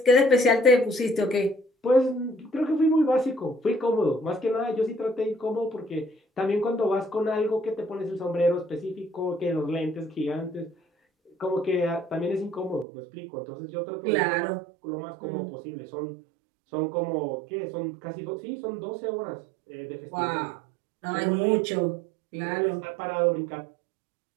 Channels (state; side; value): drops out; left; at 12.9 s